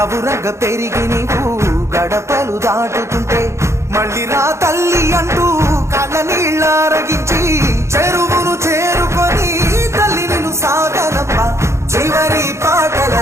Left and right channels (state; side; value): late; left; 0.14 ms